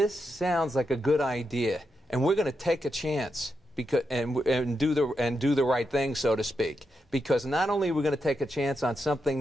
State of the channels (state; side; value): normal; both; correlation 0.85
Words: sounds like a good idea, and we're going to take a chance and do the right thing, so to speak. Because not only are we going to take a chance on